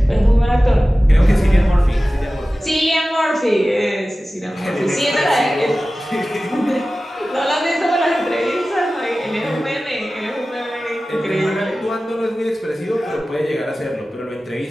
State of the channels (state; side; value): normal; both; correlation 0.96